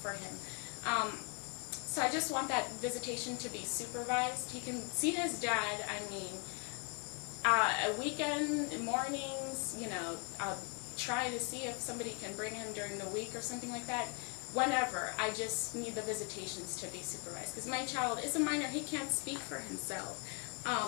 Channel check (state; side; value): quieter; right; 36.3 dB